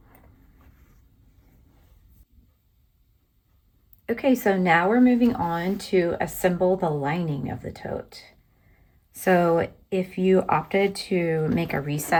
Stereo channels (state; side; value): identical; both; correlation 1.00